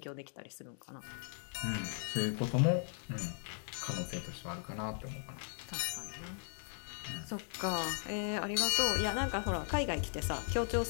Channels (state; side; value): silent; right; 53 dB below the other